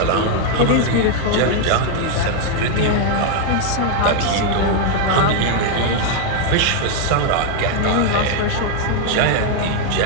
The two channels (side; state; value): both; different; correlation 0.00